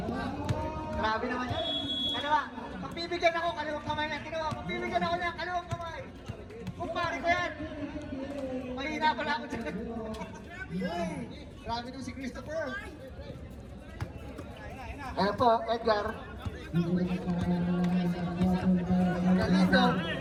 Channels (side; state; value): both; identical; correlation 1.00